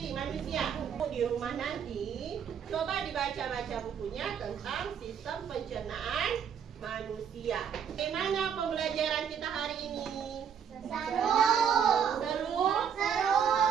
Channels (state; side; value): quieter; left; 7.9 dB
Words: manusia. Di rumah nanti, coba dibaca-baca bukunya tentang sistem pencernaan manusia. Bagaimana pembelajaran kita hari ini? Seru. Seru? Seru.